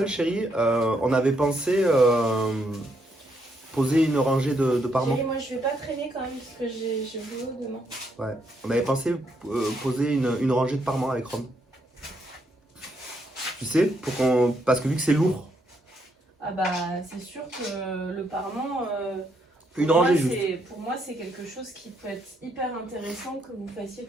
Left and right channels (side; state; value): both; normal; correlation 0.75